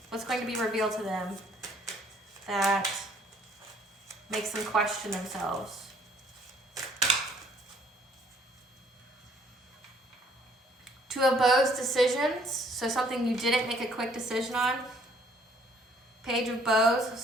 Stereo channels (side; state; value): both; normal; correlation 0.62